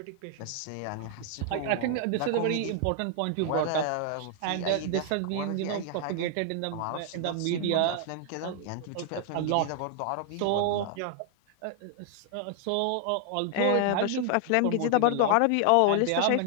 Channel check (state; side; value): different; both; correlation 0.00